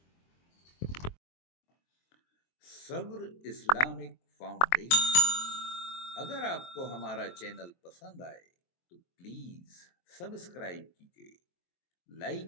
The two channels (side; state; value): right; late; 23 ms